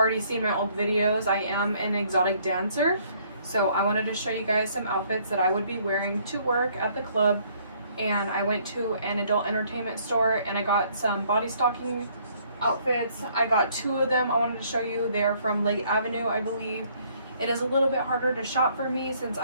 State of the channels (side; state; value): both; inverted; correlation -0.64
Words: seen my old videos, I am an exotic dancer. So I wanted to show you guys some outfits that I would be wearing to work at the club. And I went to an adult entertainment store and I got some body stocking outfits. I got two of them I wanted to show you. They're from Lake Avenue, I believe. It is a little bit harder to shop for me since